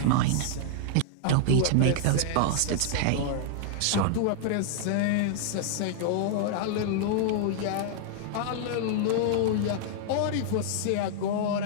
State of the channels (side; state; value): both; different; correlation -0.01